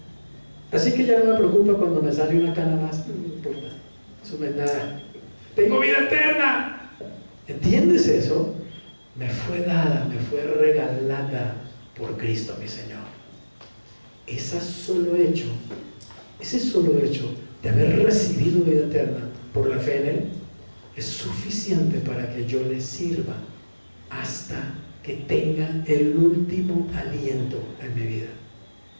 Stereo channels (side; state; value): both; inverted; correlation -1.00